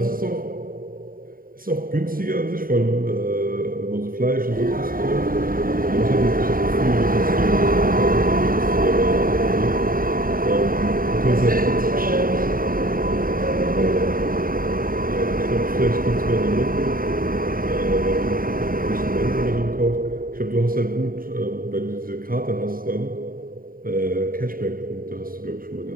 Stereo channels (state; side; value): late; left; 0.41 ms